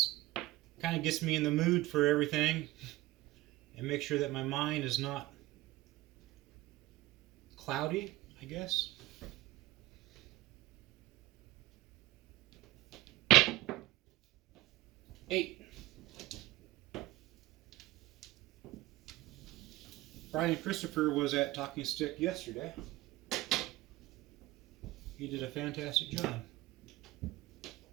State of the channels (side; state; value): left; quieter; 18.0 dB